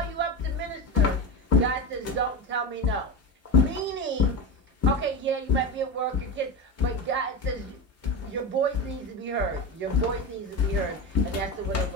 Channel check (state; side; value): normal; both; correlation 0.22